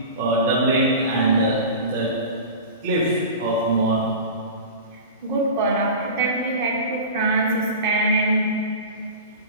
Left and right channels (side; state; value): both; inverted; correlation -0.32